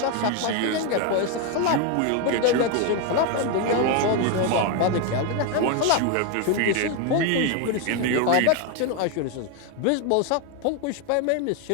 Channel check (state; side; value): different; both; correlation 0.01